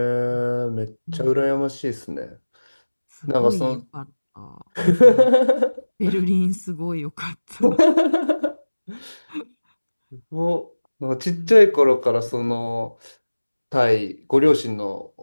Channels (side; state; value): both; inverted; correlation -1.00